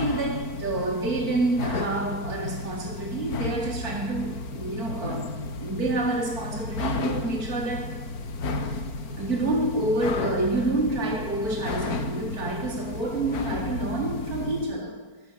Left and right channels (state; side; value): late; right; 4.4 ms